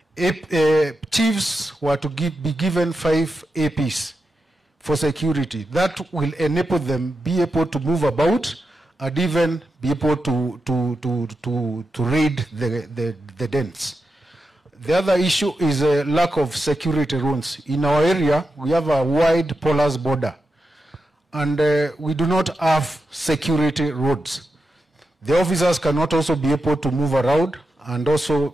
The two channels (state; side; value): normal; both; correlation 0.89